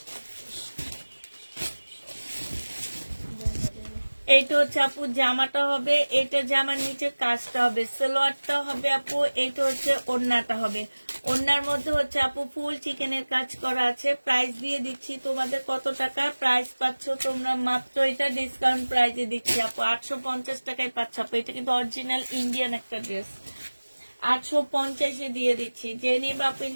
এইটা হচ্ছে আপু জামাটা হবে, এটা জামার নিচে কাজটা হবে, সালোয়ারটা হবে আপু, এইটা হচ্ছে ওড়নাটা হবে। ওড়নার মধ্যে হচ্ছে আপু ফুল চিকেনের কাজ করা আছে। প্রাইস দিয়ে দিচ্ছি তোমাদের কত টাকা, প্রাইস পাচ্ছ তোমরা মাত্র, এটা ডিসকাউন্ট প্রাইসে দিচ্ছি আপু 850 টাকায় পাচ্ছ আপু। এটা কিন্তু অরিজিনাল ইন্ডিয়ান একটা ড্রেস। 850 দিয়ে দিচ্ছি। যে নিবা আপু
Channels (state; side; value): inverted; both; correlation -1.00